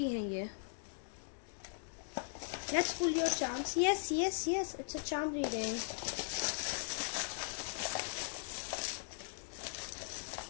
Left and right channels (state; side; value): silent; right; digital silence